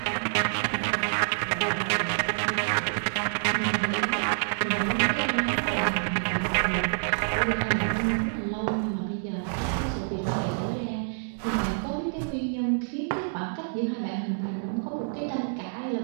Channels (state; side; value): silent; left; digital silence